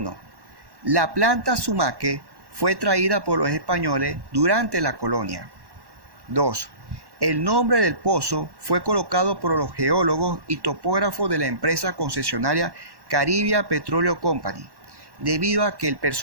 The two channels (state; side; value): late; left; 1.1 ms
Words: la planta sumaque fue traída por los españoles durante la colonia. 2. El nombre del pozo fue colocado por los geólogos y topógrafos de la empresa concesionaria Caribbean Petroleum Company, debido a que el